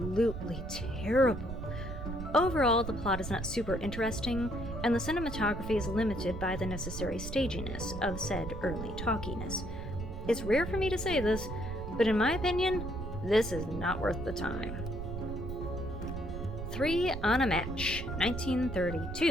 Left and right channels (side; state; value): right; noise; rumble, 7 dB below the sound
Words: terrible. Overall, the plot is not super interesting, and the cinematography is limited by the necessary staginess of said early talkiness. It's rare for me to say this, but in my opinion, this is not worth the time. 3 on a Match,